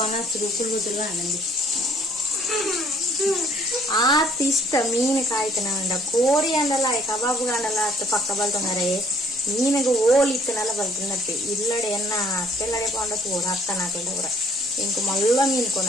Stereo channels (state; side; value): normal; both; correlation 0.60